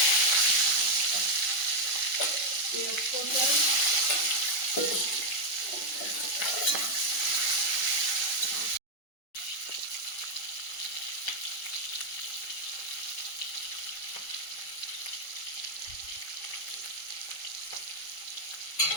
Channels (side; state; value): right; late; 5.4 ms